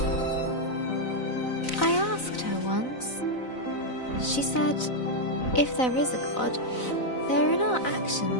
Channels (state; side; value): late; right; 4.0 ms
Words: I asked her once. She said, if there is a God, they're in our